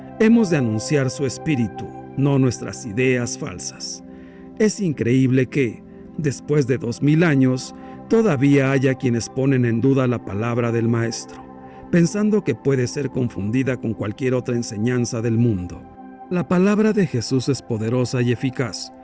Hemos de anunciar su espíritu, no nuestras ideas falsas. Es increíble que, después de 2000 años, todavía haya quienes ponen en duda la palabra del Maestro, pensando que puede ser confundida con cualquier otra enseñanza del mundo. La palabra de Jesús es poderosa y eficaz.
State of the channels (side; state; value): both; identical; correlation 1.00